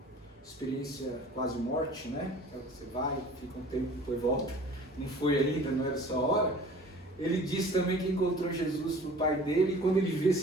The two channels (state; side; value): normal; both; correlation 0.46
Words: experiência quase morte, né? Você vai, fica um tempo, depois volta. Não foi ainda, não era essa hora. Ele disse também que encontrou Jesus pro pai dele, e quando ele viu